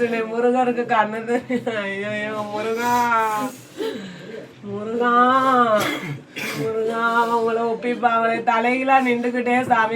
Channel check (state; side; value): identical; both; correlation 1.00